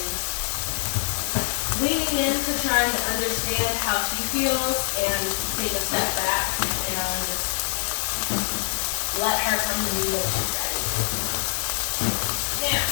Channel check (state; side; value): silent; right; 62 dB below the other